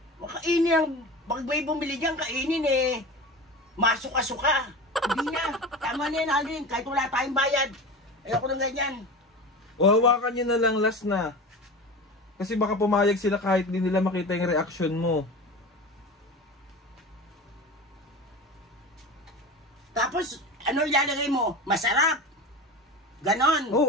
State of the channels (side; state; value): both; normal; correlation 0.31